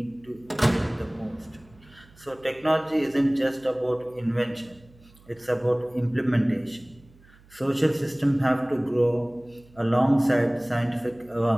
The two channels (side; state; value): right; noise; hum, 26 dB below the sound